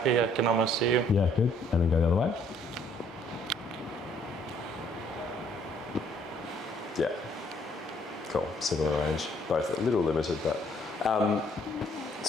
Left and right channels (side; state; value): both; normal; correlation 0.63